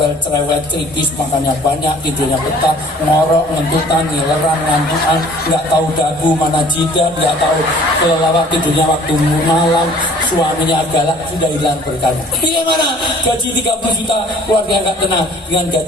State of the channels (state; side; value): normal; both; correlation 0.53